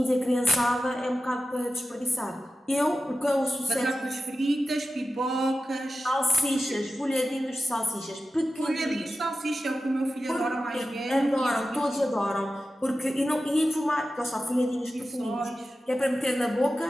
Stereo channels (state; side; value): normal; both; correlation 0.94